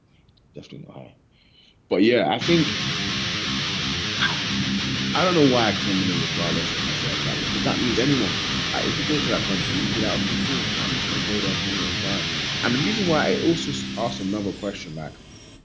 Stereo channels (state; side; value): identical; both; correlation 1.00